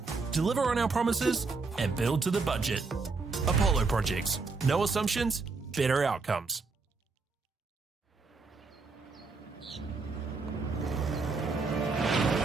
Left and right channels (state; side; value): quieter; left; 4.2 dB